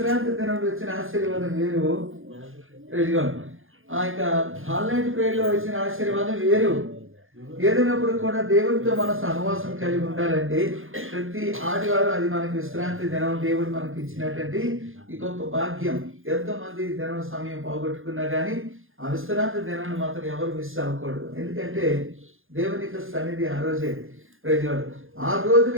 దినం వచ్చిన ఆశీర్వాదం వేరు. ప్రైజ్ ఆ యొక్క హాల్ నైట్ ప్రేయర్ లో వచ్చిన ఆశీర్వాదం వేరు. ఏదైనప్పుడు కూడా దేవుడితో మన సహవాసం కలిగి ఉండాలంటే ప్రతి ఆదివారం అది మనకి విశ్రాంతి దినం దేవుడు మనకి ఇచ్చినటువంటి ఈ గొప్ప భాగ్యం. ఎంతో మంది దినం సమయం పోగొట్టుకున్నా కానీ ఆ విశ్రాంతి దినాన్ని మాత్రం ఎవరు మిస్ అవ్వకూడదు. ఎందుకంటే దేవుని యొక్క సన్నిధి ఆ రోజే. ప్రైజ్గాడు ఆ రోజు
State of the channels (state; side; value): late; left; 0.59 ms